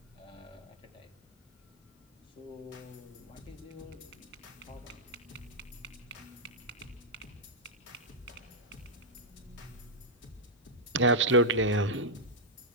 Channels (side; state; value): both; normal; correlation -0.06